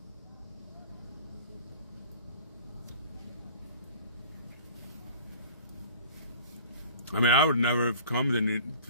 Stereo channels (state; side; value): inverted; both; correlation -0.45